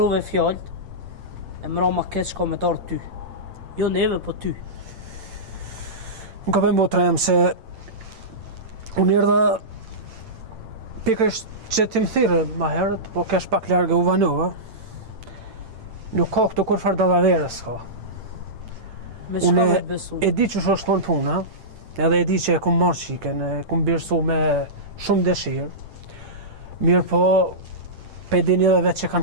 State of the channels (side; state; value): left; late; 8.9 ms